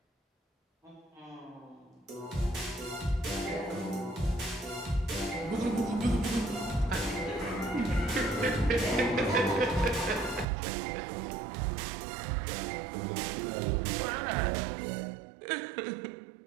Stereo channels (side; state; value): left; drops out; at 10.5 s